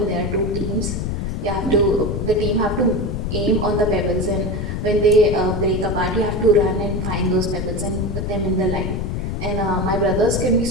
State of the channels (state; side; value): noise; left; rumble, 2 dB below the sound